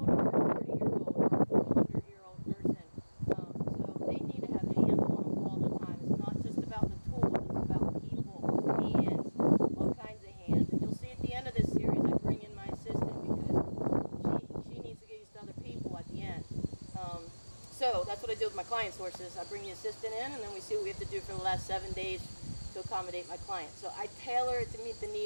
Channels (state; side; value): inverted; both; correlation -1.00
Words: or a 40-year-old or a 400-year-old person. So they need to have hands on them all the time. It's not just about the tools, it's about people, hands, all kinds of hands. And you'll see at the end of this series, I bring in my assistant because she needs to get used to other people at the end. So that's what I do with my clients' horses. I bring the assistant in, and then we see what we have to do for the last 7 days to accommodate my client. So I tailor it to meet the